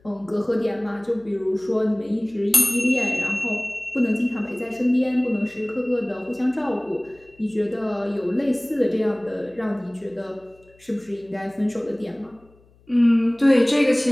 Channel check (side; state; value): left; noise; hum, 30 dB below the sound